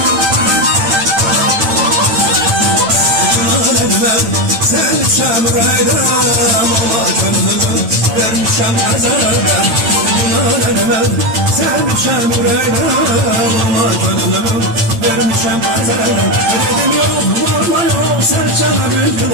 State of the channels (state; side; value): late; left; 9.0 ms